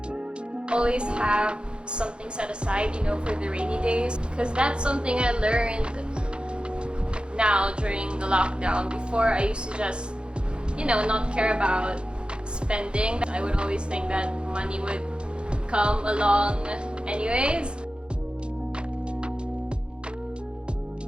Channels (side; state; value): left; late; 0.054 ms